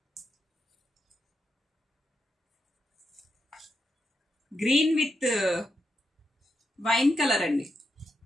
గ్రీన్ విత్ వైన్ కలర్ అండి.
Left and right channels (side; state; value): both; normal; correlation 0.84